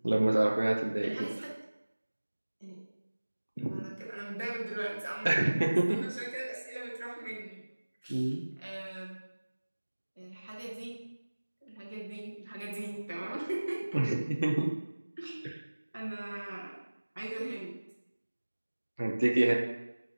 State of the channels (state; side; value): inverted; both; correlation -1.00